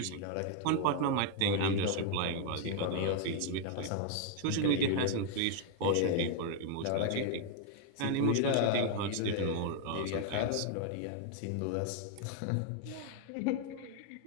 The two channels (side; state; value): both; different; correlation 0.00